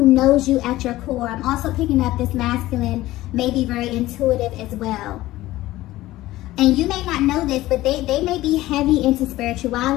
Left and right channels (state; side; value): quieter; right; 16.6 dB